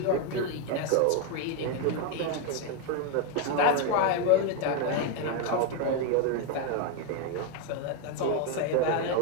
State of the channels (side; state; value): both; different; correlation 0.01